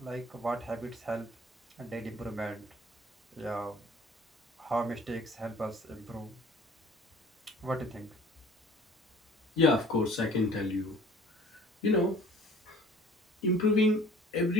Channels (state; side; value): normal; both; correlation 0.50